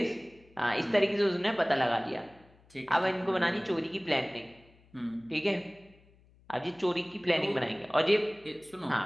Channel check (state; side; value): noise; left; hum, 29 dB below the sound